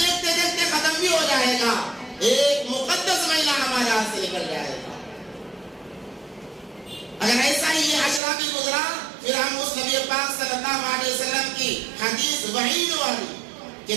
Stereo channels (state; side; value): drops out; left; at 8.2 s